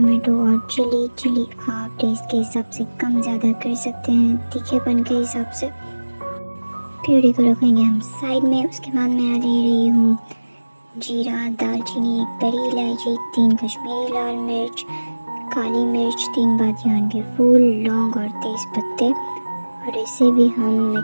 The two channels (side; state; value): both; inverted; correlation -1.00